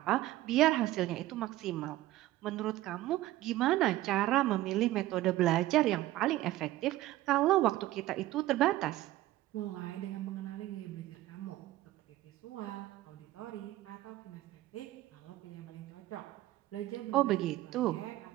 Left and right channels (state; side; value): quieter; left; 16.1 dB